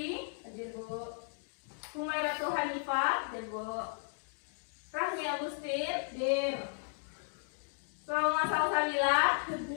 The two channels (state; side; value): silent; right; digital silence